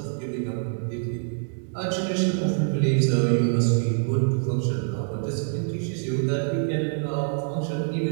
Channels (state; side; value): silent; left; 61 dB below the other